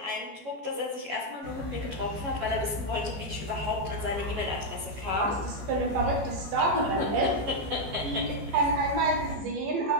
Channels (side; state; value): left; late; 14 ms